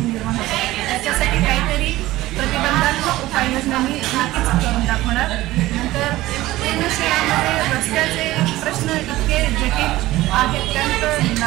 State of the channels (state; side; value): quieter; left; 17.0 dB